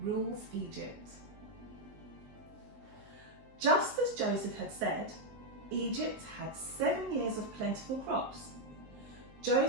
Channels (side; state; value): left; late; 19 ms